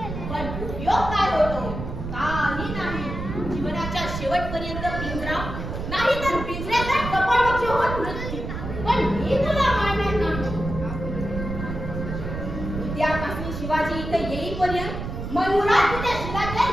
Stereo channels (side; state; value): right; noise; rumble, 6 dB below the sound